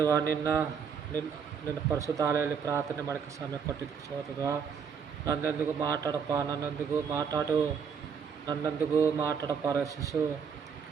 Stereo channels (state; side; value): quieter; left; 6.6 dB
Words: ನಿನ್ನ ಪರಿಶುದ್ಧಾಲಯಲ್ಲಿ ಪ್ರಾರ್ಥನೆ ಮಾಡೋಕ್ಕೆ ಸಮಯ ಕೊಟ್ಟಿದ್ದಕ್ಕೆ ಸ್ತೋತ್ರತ್ವ. ನನ್ನೊಂದಿಗೂ ಮಾತಾಡಪ್ಪ ರಕ್ಷಿಸು.